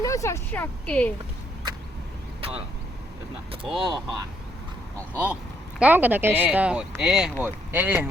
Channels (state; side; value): normal; both; correlation 0.72